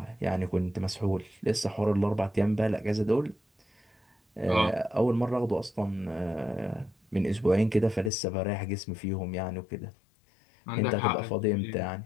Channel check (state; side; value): drops out; right; at 8.1 s